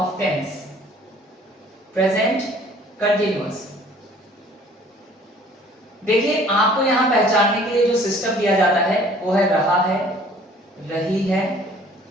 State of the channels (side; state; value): both; normal; correlation 0.54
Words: tense, present continuous. देखिए, आपको यहां पहचानने के लिए जो सिस्टम दिया जाता है वो है रहा है, रही है,